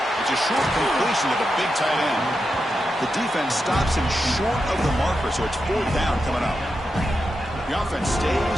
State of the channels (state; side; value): normal; both; correlation 0.88